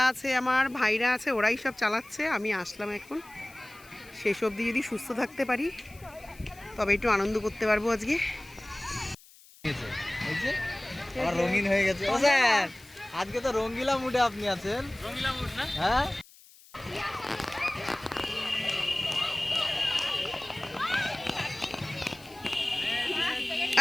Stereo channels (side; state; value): left; noise; hiss, 24 dB below the sound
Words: আছে, আমার ভাইরা আছে, ওরাই সব চালাচ্ছে। আমি আসলাম এখন। শেষ অবধি যদি সুস্থ থাকতে পারি তবে একটু আনন্দ করতে পারবো আজকে। রঙিন হয়ে গেছে। ও স্যার, আজকে তো রঙ্গিলা মুডে আপনি আছেন। রঙ্গিলা মুড না? হ্যাঁ।